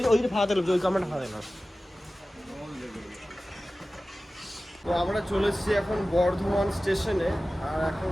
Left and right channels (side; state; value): both; normal; correlation 0.96